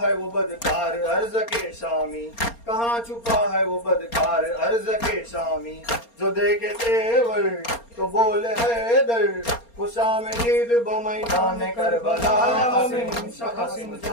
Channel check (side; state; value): right; late; 4.3 ms